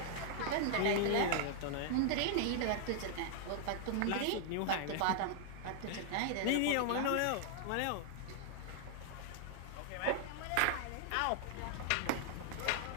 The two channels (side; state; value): both; different; correlation -0.01